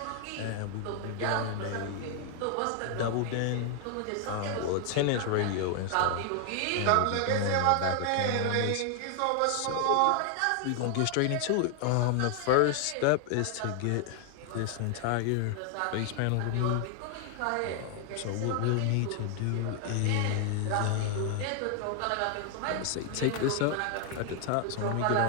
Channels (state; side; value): different; both; correlation 0.00